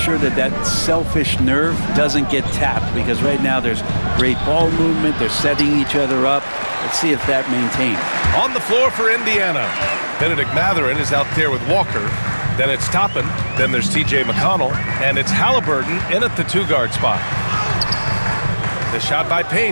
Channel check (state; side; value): inverted; both; correlation -1.00